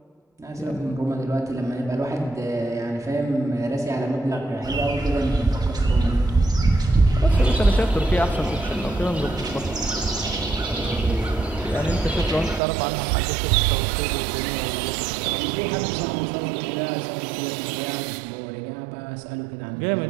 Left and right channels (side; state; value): left; drops out; at 12.6 s